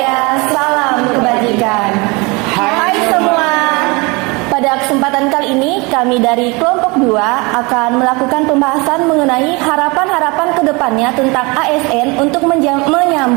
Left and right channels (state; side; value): quieter; left; 26.9 dB